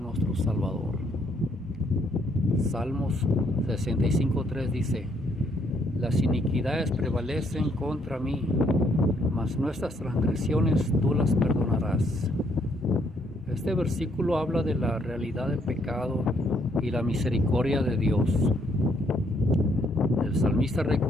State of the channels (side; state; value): both; normal; correlation 0.70